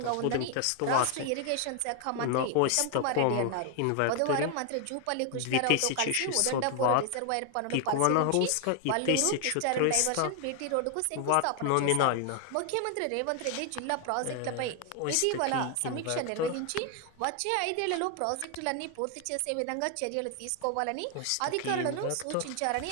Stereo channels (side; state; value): both; different; correlation 0.00